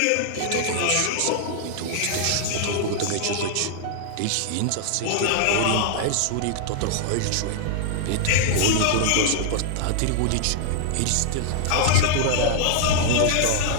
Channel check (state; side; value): different; both; correlation -0.01